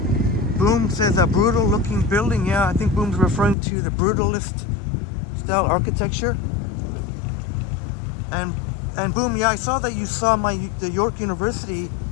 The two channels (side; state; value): right; drops out; at 3.6 s